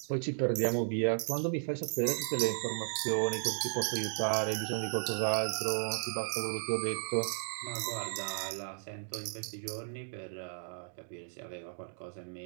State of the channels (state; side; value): silent; left; digital silence